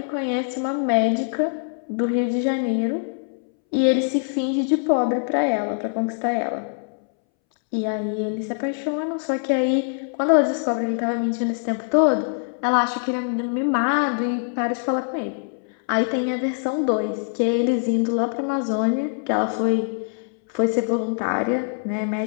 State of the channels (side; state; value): right; silent; 63 dB below the other